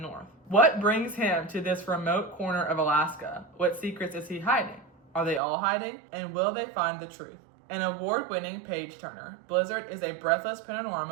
What brings him to this remote corner of Alaska? What secrets is he hiding? Are they all hiding? And will they find the truth? An award-winning page-turner, Blizzard is a breathless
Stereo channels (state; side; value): drops out; left; at 5.4 s